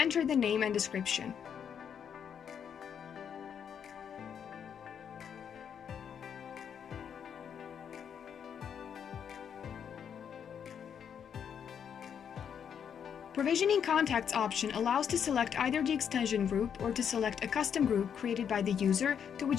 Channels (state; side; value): quieter; right; 8.0 dB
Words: the name and description. Provisioning Contacts option allows to select either the extension group or to select a custom group created by the user to